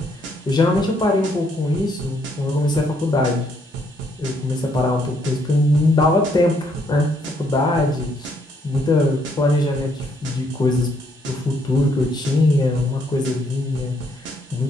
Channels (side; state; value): both; normal; correlation 0.71